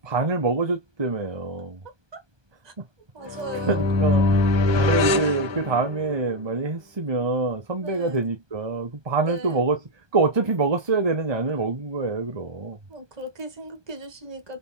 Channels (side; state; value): left; late; 1.2 ms